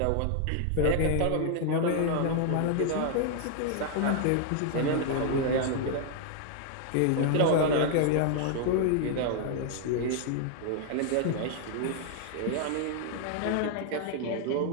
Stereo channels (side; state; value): both; different; correlation 0.00